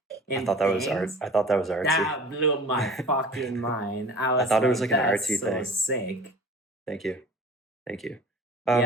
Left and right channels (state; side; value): normal; both; correlation 0.42